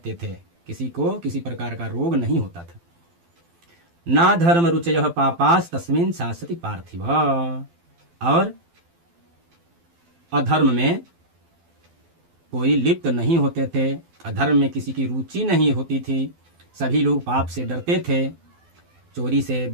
थे, किसी को किसी प्रकार का रोग नहीं होता था। ना धर्म रुचयः पापास तस्मिन् शासति पार्थिव, और अधर्म में कोई लिप्त नहीं होते थे, अधर्म में किसी की रुचि नहीं होती थी। सभी लोग पाप से डरते थे, चोरी से,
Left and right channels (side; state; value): left; late; 12 ms